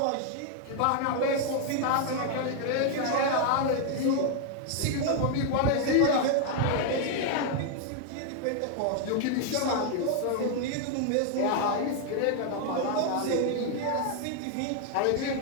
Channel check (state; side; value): different; both; correlation 0.00